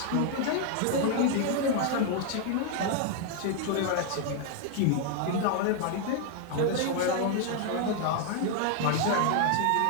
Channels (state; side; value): different; both; correlation 0.00